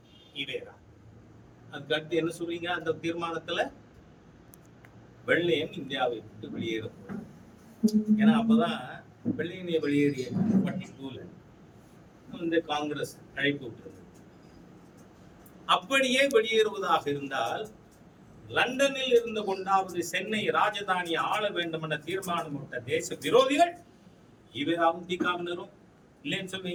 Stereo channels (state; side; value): identical; both; correlation 1.00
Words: ஈவேரா. அதுக்கு அடுத்து என்ன சொல்றீங்க? அந்த தீர்மானத்துல வெள்ளையன் இந்தியாவை விட்டு வெளியேறும். ஏன்னா அப்பதான் வெள்ளையனை வெளியேறிய 42ல இந்த காங்கிரஸ் அழைப்பு விட்டுருந்தது. அப்படியே வெளியேறுவதாக இருந்தால் லண்டனில் இருந்து கொண்டாவது சென்னை ராஜதானியை ஆள வேண்டும் என்ற தீர்மானம் விட்ட தேச விரோதிகள் ஈவேராவும் தீகாவினரும் இல்லைன்னு